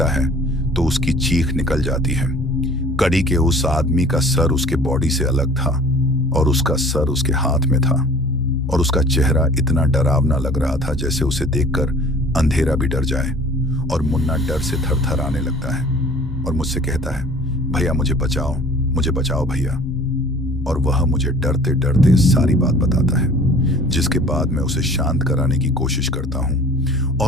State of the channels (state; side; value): normal; both; correlation 0.48